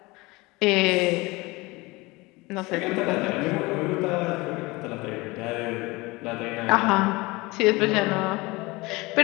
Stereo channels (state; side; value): quieter; right; 23.1 dB